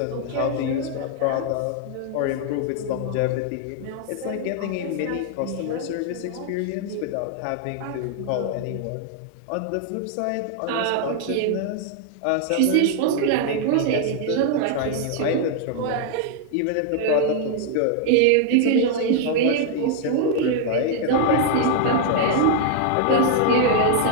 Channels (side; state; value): both; different; correlation 0.00